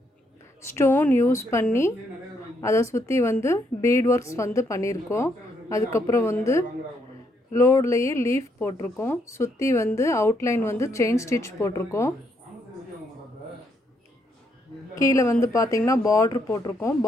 ஸ்டோன் யூஸ் பண்ணி அதை சுற்றி வந்து பீட் ஒர்க்ஸ் வந்து பண்ணியிருக்கோம். அதுக்கப்புறம் வந்து லோட்லேயே லீஃப் போட்டிருக்கோம். சுற்றி வந்து அவுட்லைன் வந்து செயின் ஸ்டிச் போட்டிருக்கோம். கீழே வந்து பார்த்திங்கன்னா பார்ட்ரு போட்டிருக்கோம்.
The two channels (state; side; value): normal; both; correlation 0.75